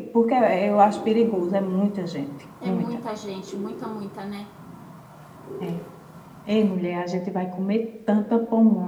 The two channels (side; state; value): both; identical; correlation 1.00